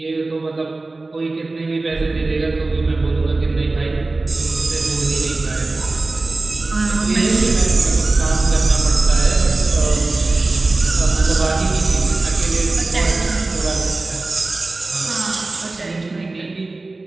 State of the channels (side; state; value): left; quieter; 3.3 dB